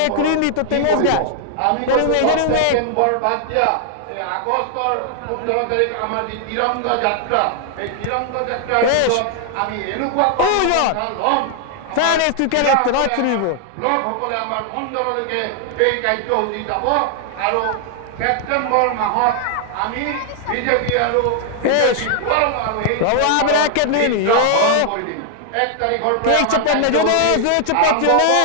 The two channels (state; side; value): different; both; correlation 0.00